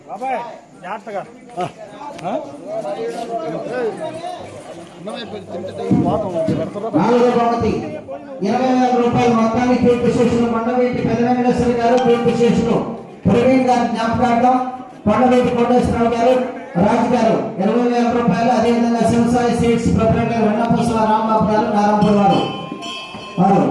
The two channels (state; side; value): identical; both; correlation 1.00